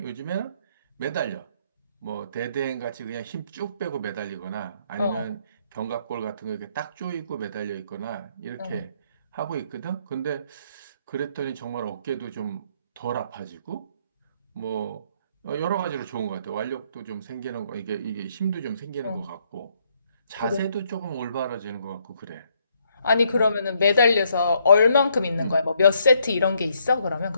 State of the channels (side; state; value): both; inverted; correlation -0.71